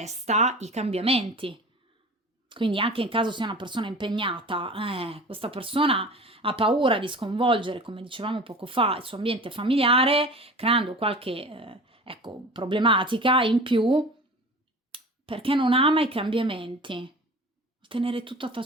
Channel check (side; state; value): both; normal; correlation 0.38